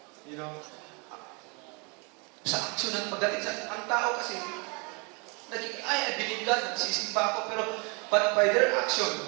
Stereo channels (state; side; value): quieter; left; 32.2 dB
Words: You know, sa action ng pagdating sa ang tao kasi, I believe God, nagsisimba ako, pero but by their